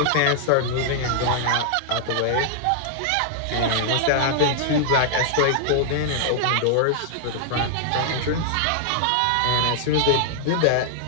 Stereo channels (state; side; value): different; both; correlation 0.00